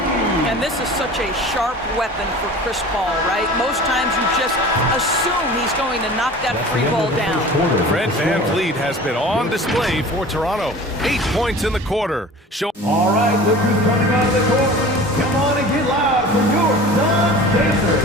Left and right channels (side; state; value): both; normal; correlation 0.40